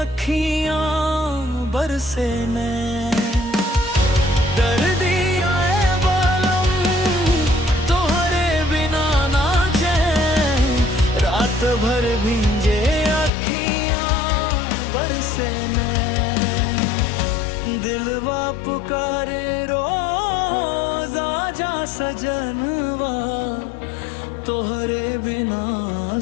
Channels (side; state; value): right; drops out; at 13.3 s